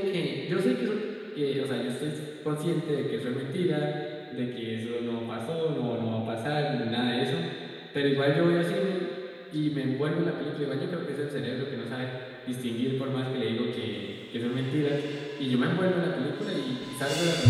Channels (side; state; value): both; identical; correlation 1.00